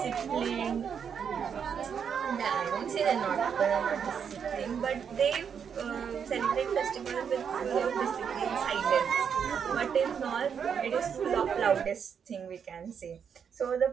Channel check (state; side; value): quieter; left; 7.3 dB